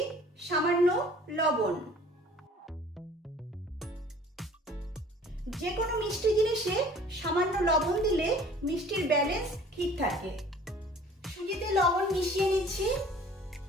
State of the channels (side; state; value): both; normal; correlation 0.50